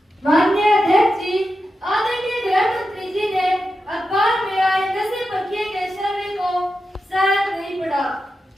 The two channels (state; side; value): normal; both; correlation 0.90